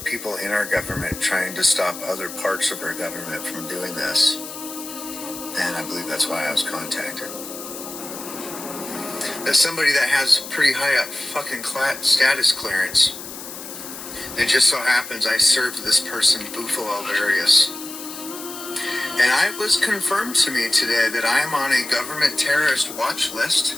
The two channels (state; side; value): noise; left; hiss, 11 dB below the sound